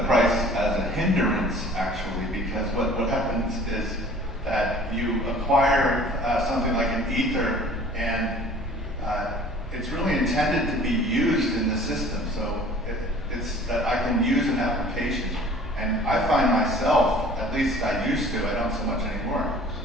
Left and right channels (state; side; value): normal; both; correlation 0.49